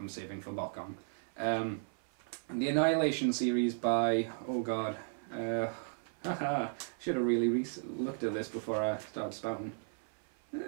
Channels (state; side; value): silent; left; 54 dB below the other